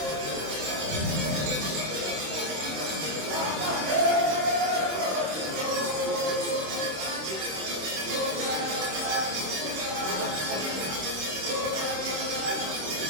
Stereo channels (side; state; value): left; late; 26 ms